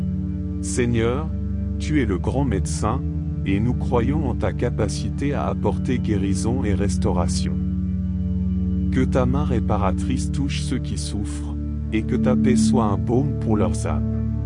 Seigneur, tu es le grand médecin, et nous croyons en ta capacité à apporter guérison et restauration. Que ta main réparatrice touche ceux qui souffrent, et que ta paix soit un baume pour leurs âmes.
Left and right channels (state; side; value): identical; both; correlation 1.00